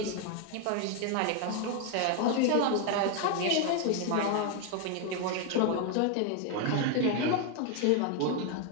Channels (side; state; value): both; different; correlation 0.01